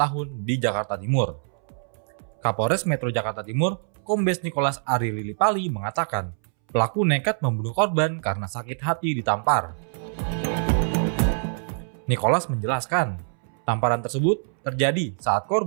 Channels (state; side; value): silent; left; 62 dB below the other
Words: di Jakarta Timur. Kapolres Metro Jakarta Timur, Kombes Nicholas Ari Lilipali mengatakan, pelaku nekat membunuh korban karena sakit hati ditampar. Nicholas menjelaskan, tamparan tersebut terjadi saat